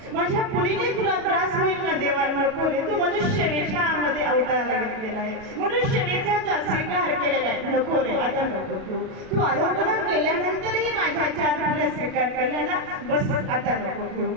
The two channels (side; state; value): left; late; 37 ms